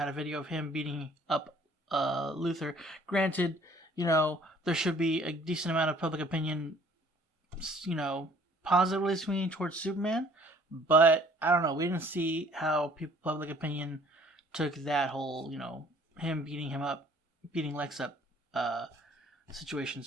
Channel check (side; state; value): both; normal; correlation 0.57